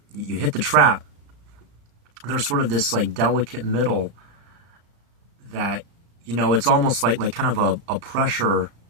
you hit the trap. There's sort of this like delicate middle that, it's almost like kind of a pressure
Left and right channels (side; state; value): left; late; 35 ms